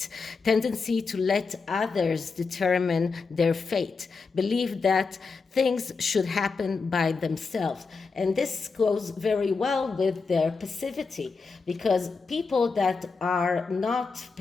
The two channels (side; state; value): right; quieter; 4.6 dB